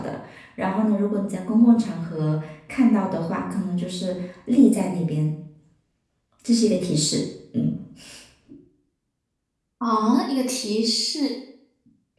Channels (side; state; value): both; identical; correlation 1.00